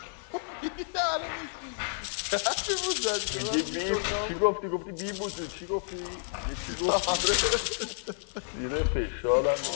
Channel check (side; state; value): right; silent; digital silence